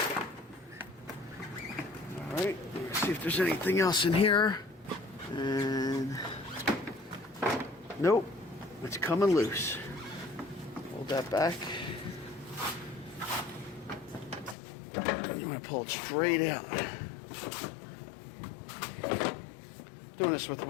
Alright, let's see if there's anything else in here. And nope, it's coming loose. hold that back. I'm going to pull it straight out. Doing this with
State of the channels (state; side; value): drops out; right; at 14.6 s